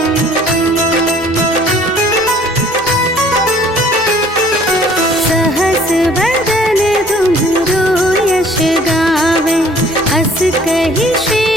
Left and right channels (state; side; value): normal; both; correlation 0.55